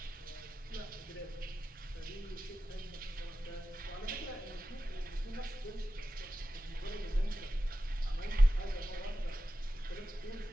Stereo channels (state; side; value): normal; both; correlation 0.93